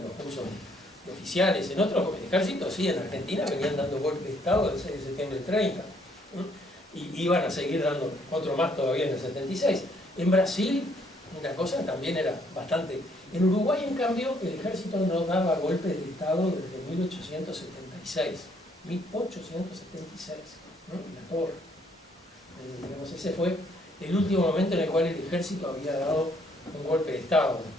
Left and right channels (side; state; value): both; normal; correlation 0.67